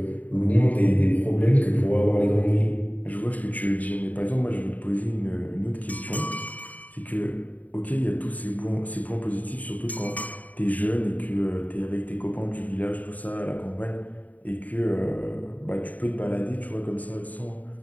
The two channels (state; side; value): late; right; 0.074 ms